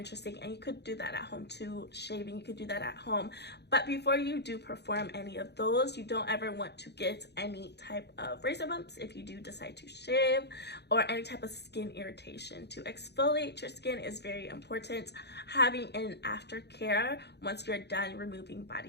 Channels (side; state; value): right; late; 0.49 ms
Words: and you could do that at home too. Shaving, you could do that at home, but before you do perform any of those, you don't ever want to get any type of razor bumps if you do decide to shave, or any type of skin irritation. To exfoliate your skin is very important. Having an aftercare once you're done removing